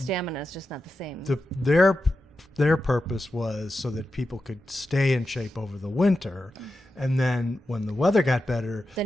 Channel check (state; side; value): normal; both; correlation 0.90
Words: is just not the same. Their purpose was so that people could stay in shape over the winter, and then when the weather got better,